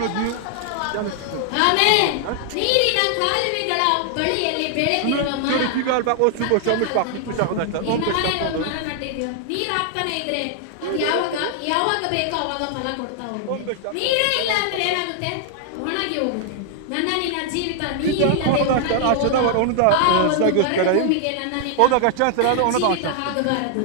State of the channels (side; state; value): both; different; correlation 0.00